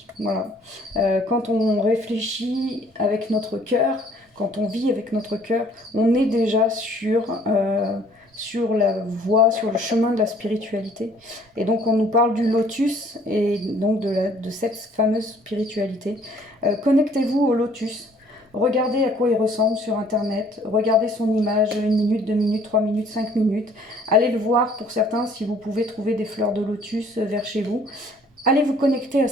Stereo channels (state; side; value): normal; both; correlation 0.58